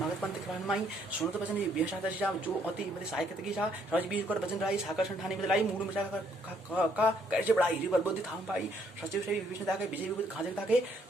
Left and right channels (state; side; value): normal; both; correlation 0.68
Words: पंथ के माई। सुनो तो वचन बेहसा जा, जो अति बड़े सायकत की जा। सहज बीज कर वचन राई, साकर संठानी बदलाई। मूड मचा का कैसे बढ़ाई, रिवर बुद्धि थाम पाई। सचिव से विष्णु ताके, विजय विभूति खाजे ताके।